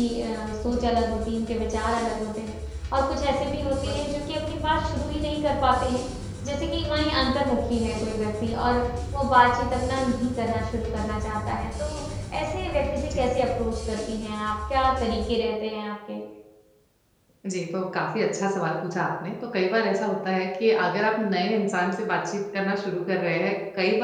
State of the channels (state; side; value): identical; both; correlation 1.00